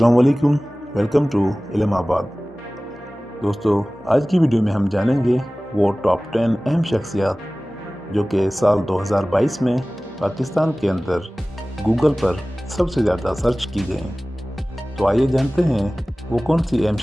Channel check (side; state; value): both; normal; correlation 0.98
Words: वालेकुम, welcome to इल्माबाद। दोस्तों, आज की वीडियो में हम जानेंगे वो टॉप 10 अहम शख्सियात जो कि साल 2022 में पाकिस्तान के अंदर गूगल पर सबसे ज़्यादा सर्च की गई। तो आइए जानते हैं वो कौन सी अहम